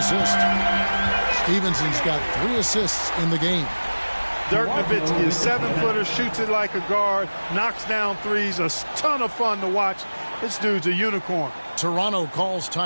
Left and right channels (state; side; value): inverted; both; correlation -1.00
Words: assist. Stevenson's got 3 assists in the game. Dirk Nowitzki, a 7-footer, shoots it like a guard, knocks down threes, a ton of fun to watch. This dude's a unicorn. Toronto calls